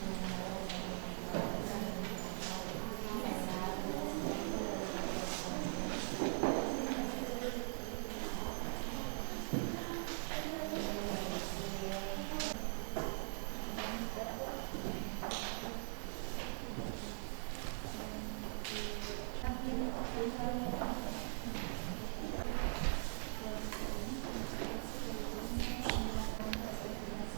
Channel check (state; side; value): silent; left; digital silence